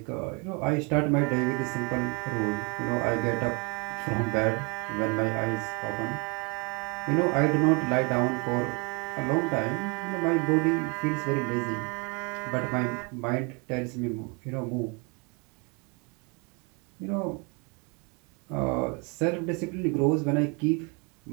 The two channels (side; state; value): left; quieter; 32.5 dB